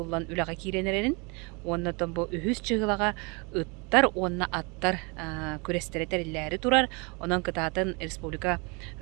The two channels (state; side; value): quieter; left; 30.2 dB